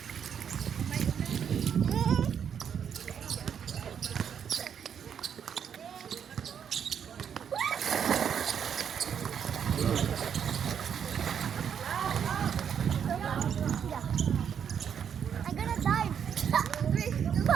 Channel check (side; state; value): left; quieter; 8.0 dB